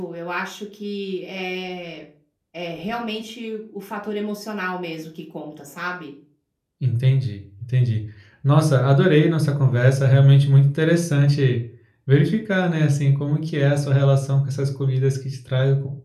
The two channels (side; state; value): both; identical; correlation 1.00